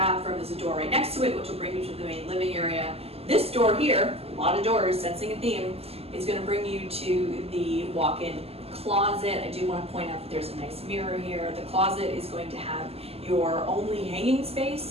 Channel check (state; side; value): late; left; 0.29 ms